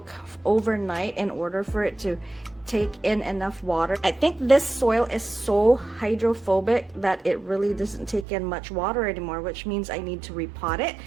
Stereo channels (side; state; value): left; drops out; at 8.2 s